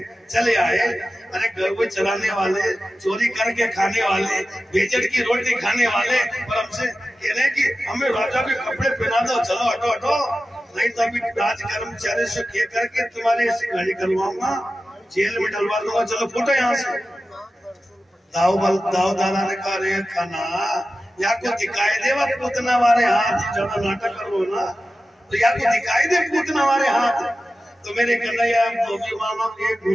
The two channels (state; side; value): normal; both; correlation 0.94